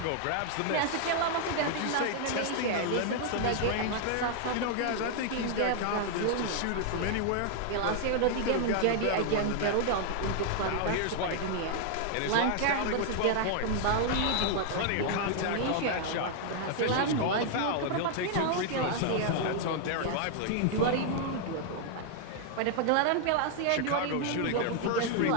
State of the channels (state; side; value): different; both; correlation 0.00